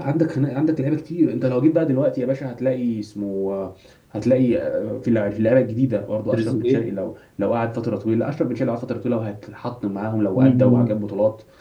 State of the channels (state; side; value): identical; both; correlation 1.00